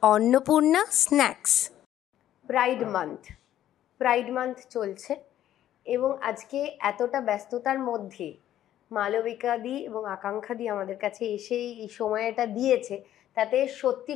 অন্নপূর্ণা স্ন্যাক্স। প্রাইড মান্থ চলছে এবং আজকে এতটা ব্যস্ততার মধ্যে মালবিকাদি এবং আকাঙ্ক্ষাদি আমাদের কাছে এসে এই সময়টা দিয়েছে, তাতে সত্যি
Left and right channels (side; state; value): right; quieter; 12.1 dB